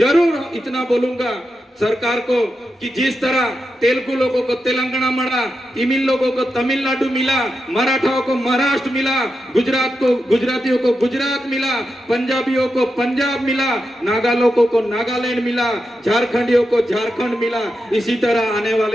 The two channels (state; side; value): normal; both; correlation 0.88